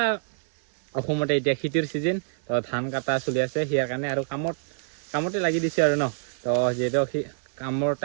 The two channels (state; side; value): silent; left; 60 dB below the other